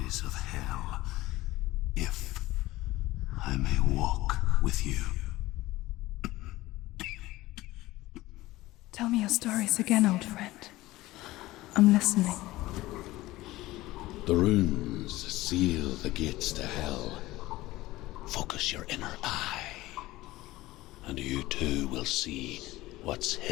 of hell, if I may walk with you. Tell me your stories again, old friend. I'm listening. The runes seal the gates to hell. Focus your inner eye, and you too will see what's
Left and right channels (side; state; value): right; quieter; 17.9 dB